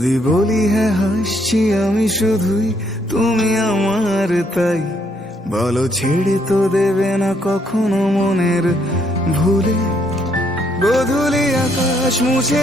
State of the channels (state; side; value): normal; both; correlation 0.71